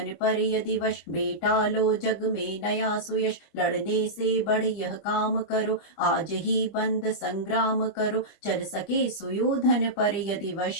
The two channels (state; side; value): late; right; 26 ms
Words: पर यदि वश, बेटा लो जग में नया सुयश। लड़ने से बढ़ यह काम करो, आज ही बंद संग्राम करो। चल सके सुयोधन पर यदि